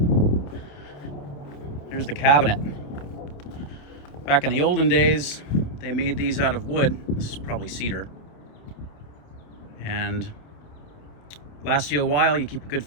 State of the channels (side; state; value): right; late; 28 ms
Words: Here's the cabinet. Back in the olden days, they made these out of wood. This is probably cedar. And lasts you a while. You keep a good